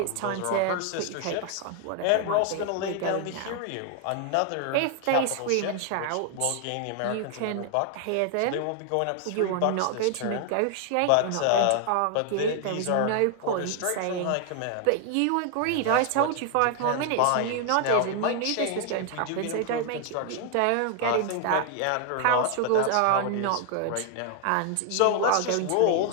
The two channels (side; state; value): both; different; correlation 0.00